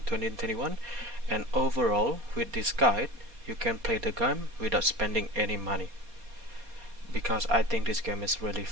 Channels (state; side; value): late; left; 4.2 ms